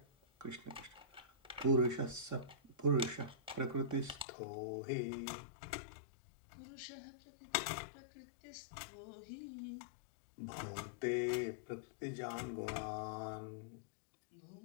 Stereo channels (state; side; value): drops out; right; at 4.2 s